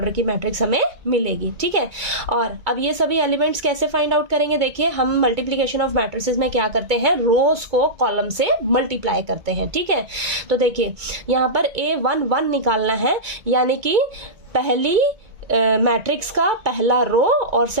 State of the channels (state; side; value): late; left; 2.2 ms